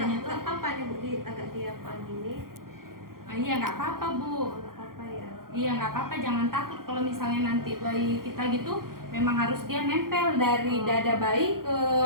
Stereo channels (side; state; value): left; late; 0.92 ms